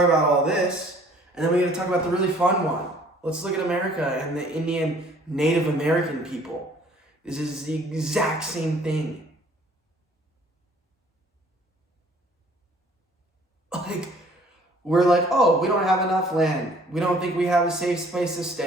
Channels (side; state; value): both; normal; correlation 0.56